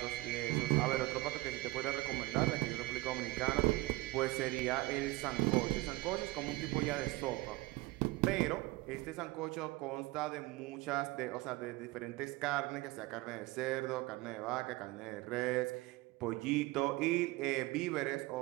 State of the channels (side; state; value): left; quieter; 20.6 dB